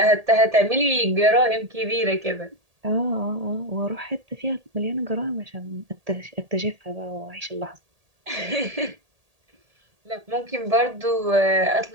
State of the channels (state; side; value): late; left; 1.8 ms